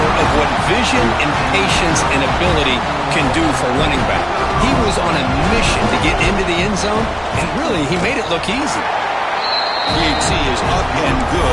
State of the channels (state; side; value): identical; both; correlation 1.00